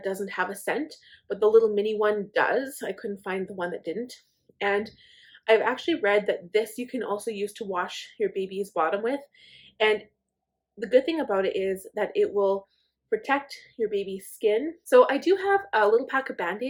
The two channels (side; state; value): both; identical; correlation 1.00